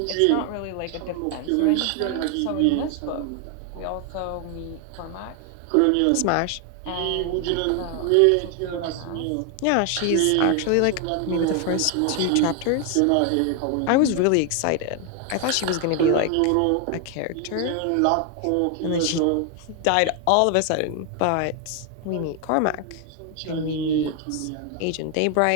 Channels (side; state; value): both; different; correlation 0.01